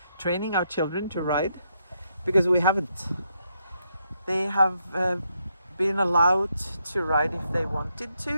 training our children to ride, because we haven't. They have been allowed to ride if they wanted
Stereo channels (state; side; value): inverted; both; correlation -0.78